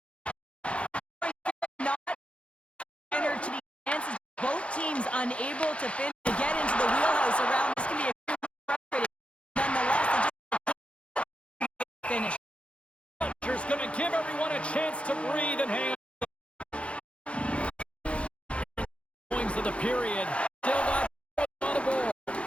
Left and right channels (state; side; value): late; right; 0.061 ms